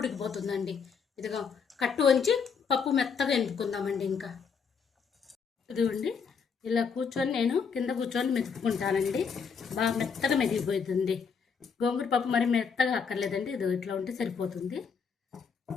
ఇదిగో కట్టు వంచి పప్పు మెత్తగా ఎనుపుకుందామండి. ఇంకా ఇదిగోండి ఇలా కూర్చొని నేను కింద కూర్చొని మెతుక్కుంటానండి. బాగా మెత్తగా మెదిగిపోతుంది. గోంగూర పప్పు మరి మెత్తగా అక్కర్లేదండి. ఇది ఇట్లా ఉంటే సరిపోతుంది.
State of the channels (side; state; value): right; quieter; 6.1 dB